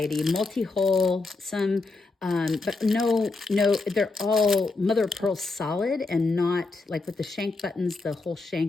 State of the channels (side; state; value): right; quieter; 3.6 dB